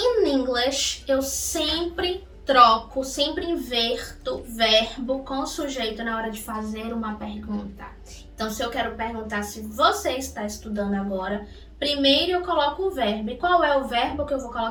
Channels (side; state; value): both; identical; correlation 1.00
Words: English eu sempre sempre inverto verbo com sujeito na hora de fazer uma pergunta. Então, se eu quero perguntar se você está estudando agora, Primeiro eu coloco o verbo. E qual é o verbo que eu vou